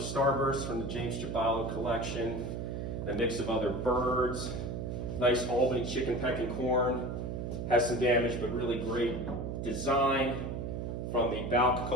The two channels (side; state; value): right; noise; hum, 4 dB below the sound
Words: from the James Giballo collection. And a mix of other birds. Nice Albany chicken pecking corn. Has some damage, but really great design from the Balk